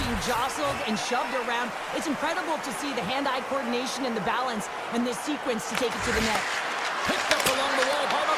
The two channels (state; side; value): identical; both; correlation 1.00